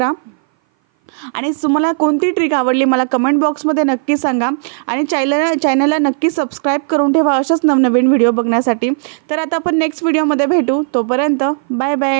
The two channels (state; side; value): silent; left; 58 dB below the other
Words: आणि तुम्हाला कोणती ट्रिक आवडली मला कमेंट बॉक्समध्ये नक्की सांगा आणि चॅनलला नक्की सबस्क्राईब करून ठेवा अशाच नवनवीन व्हिडिओ बघण्यासाठी। तर आता आपण नेक्स्ट व्हिडिओमध्ये भेटू, तोपर्यंत बाय